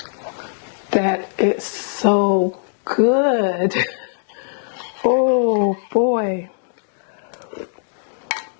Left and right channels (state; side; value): silent; right; digital silence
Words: That is so good. Oh boy.